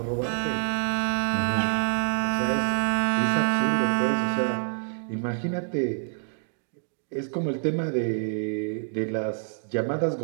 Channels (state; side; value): silent; left; 60 dB below the other